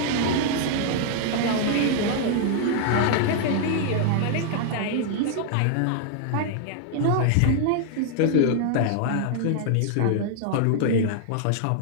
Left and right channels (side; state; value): both; different; correlation -0.01